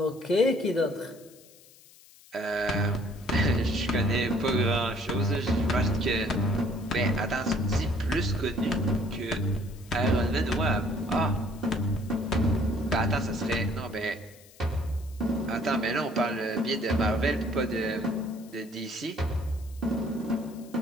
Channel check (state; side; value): noise; left; hiss, 24 dB below the sound